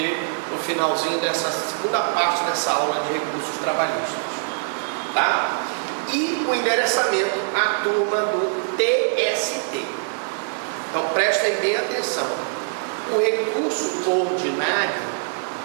no finalzinho dessa segunda parte dessa aula de recursos trabalhistas. Tá? E o endereçamento à turma do TST. Então prestem bem atenção. O recurso ordinário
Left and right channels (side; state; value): left; silent; digital silence